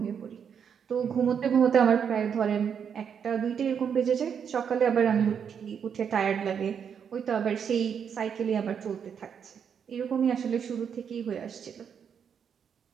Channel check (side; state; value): left; quieter; 7.5 dB